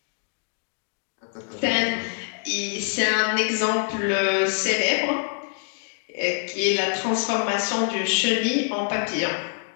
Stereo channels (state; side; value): silent; right; 56 dB below the other